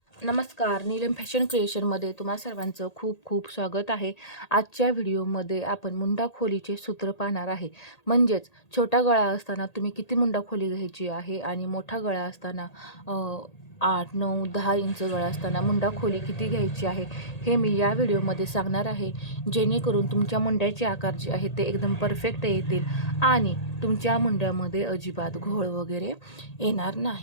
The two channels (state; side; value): late; right; 1.8 ms